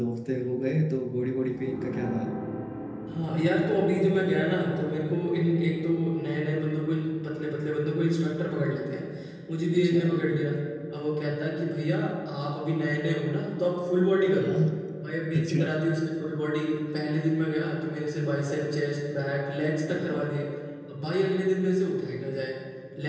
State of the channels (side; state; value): both; identical; correlation 1.00